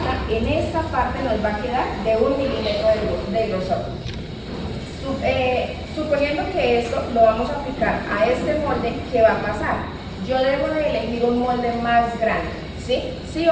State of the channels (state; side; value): identical; both; correlation 1.00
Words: en esta parte nos va a quedar de 1 milímetro de grosor. Suponiendo que esto lo vamos a aplicar a este molde, ¿qué va a pasar? Yo debo de elegir un molde más grande, ¿sí? Sí